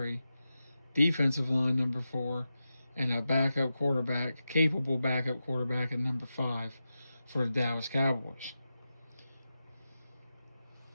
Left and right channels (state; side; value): inverted; both; correlation -0.91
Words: Defensive line, number 4. And a backup quarterback, capable backup quarterback at number 5 for the Dallas Cowboys.